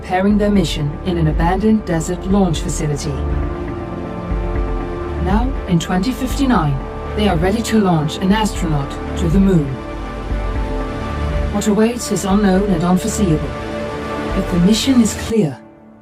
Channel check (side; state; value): both; identical; correlation 1.00